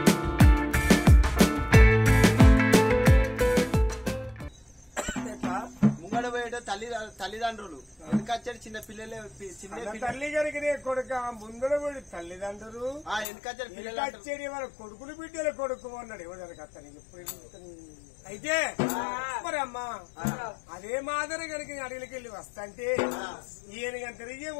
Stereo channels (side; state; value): right; drops out; at 13.2 s